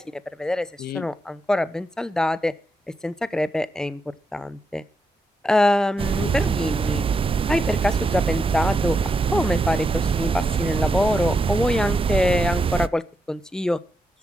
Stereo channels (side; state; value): both; normal; correlation 0.84